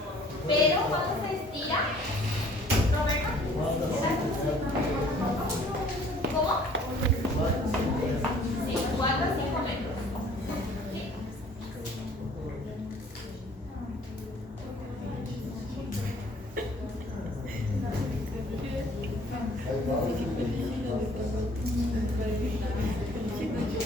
Pero cuando se estira, Roberto, ¿cómo? Sí, 4 a 5 metros. ¿Sí?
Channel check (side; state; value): both; normal; correlation 0.55